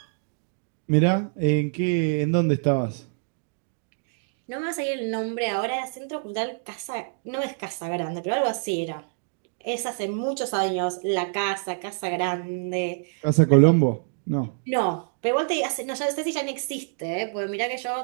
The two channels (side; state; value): left; silent; 61 dB below the other